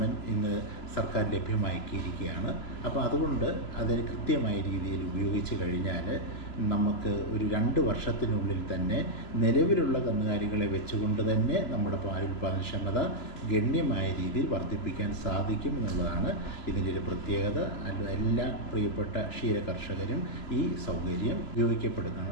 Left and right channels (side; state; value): right; late; 2.9 ms